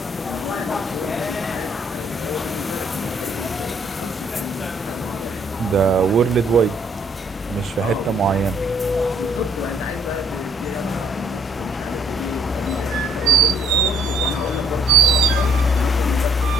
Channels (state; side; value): normal; both; correlation 0.65